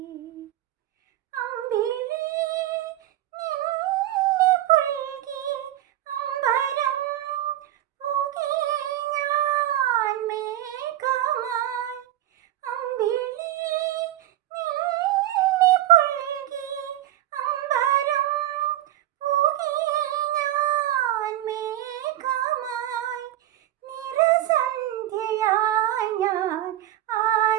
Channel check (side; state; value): left; quieter; 13.7 dB